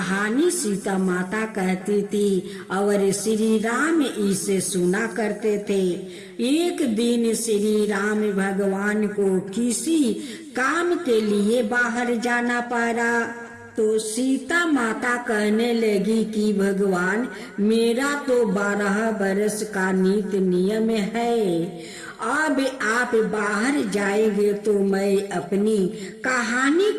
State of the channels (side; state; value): both; identical; correlation 1.00